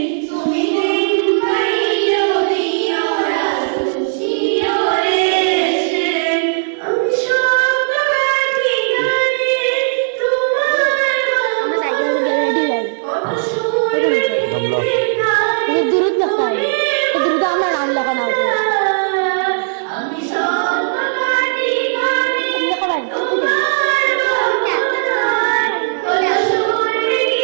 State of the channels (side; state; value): left; silent; digital silence